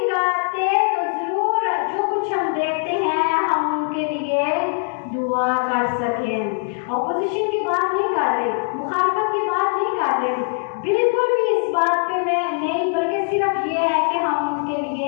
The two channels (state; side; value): silent; right; 55 dB below the other